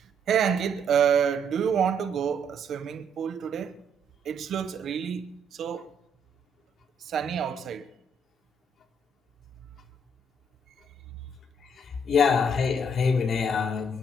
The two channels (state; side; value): normal; both; correlation 0.70